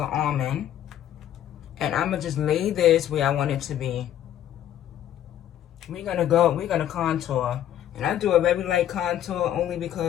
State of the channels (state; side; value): quieter; right; 11.2 dB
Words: Almond. And I'm going to just lay this where I want it to be. We're going to contour. And I do a very light contour only